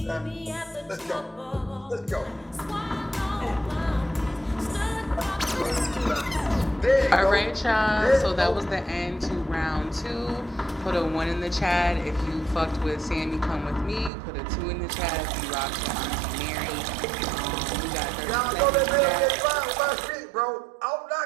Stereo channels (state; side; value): drops out; left; at 14.1 s